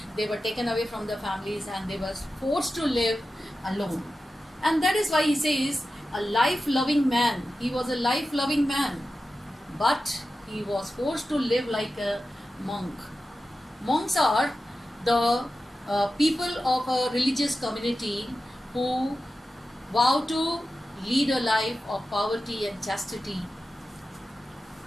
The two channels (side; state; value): both; normal; correlation 0.92